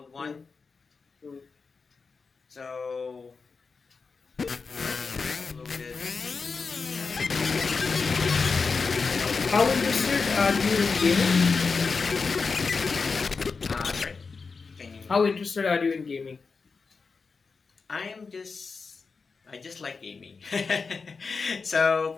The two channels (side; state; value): right; quieter; 4.8 dB